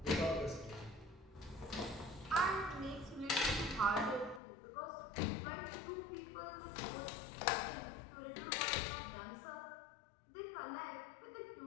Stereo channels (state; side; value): drops out; right; at 4.4 s